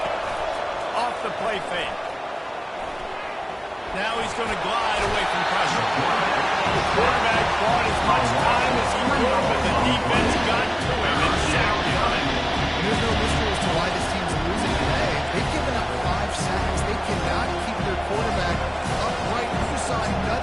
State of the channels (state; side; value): identical; both; correlation 1.00